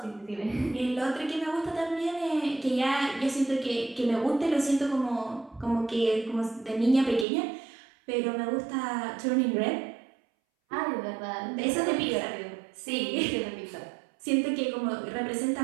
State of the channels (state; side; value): drops out; left; at 7.2 s